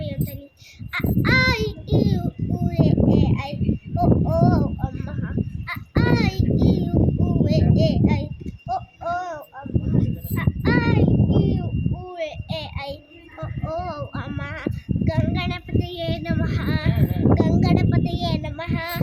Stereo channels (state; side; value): identical; both; correlation 1.00